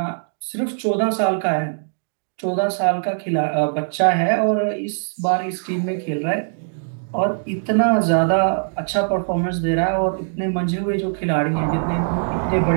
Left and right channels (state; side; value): silent; left; digital silence